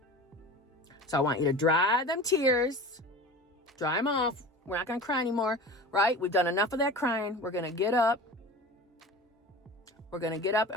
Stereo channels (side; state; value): both; normal; correlation 0.35